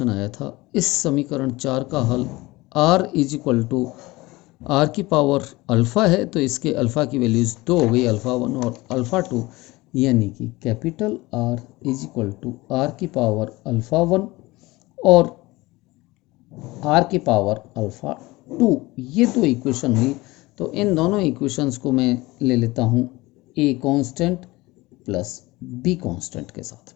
आया था, इस समीकरण 4 का हल r is equal to R की पावर अल्फ़ा है, तो इसके अल्फ़ा की वैल्यूज़ 2 हो गई, अल्फ़ा 1 और अल्फ़ा 2, यानी कि capital R is equal to R की पावर अल्फ़ा 1 और आर की पावर अल्फ़ा 2। ये दो इक्वेशन हुई। तो इन दोनों इक्वेशंस को मैं ले लेता हूँ a constant plus b constant के साथ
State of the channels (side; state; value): right; quieter; 20.8 dB